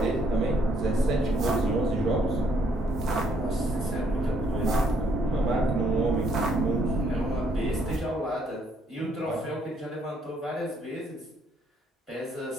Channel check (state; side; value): normal; both; correlation 0.69